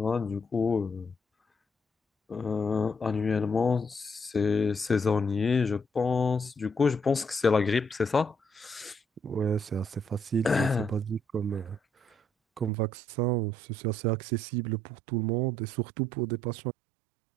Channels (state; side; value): drops out; left; at 12.7 s